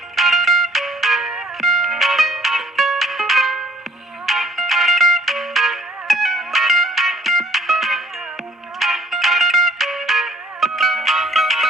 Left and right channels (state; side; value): normal; both; correlation 0.58